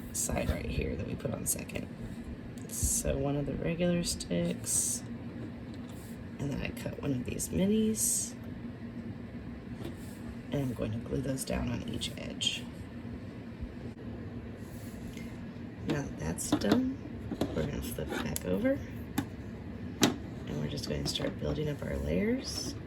side right here that we put on second. So one of the regular sticks, and then I cut one of these minis, and I'm going to glue those down on each edge. Now that that's done, we're going to flip back over. We're just going to start building up our layers.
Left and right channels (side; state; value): both; identical; correlation 1.00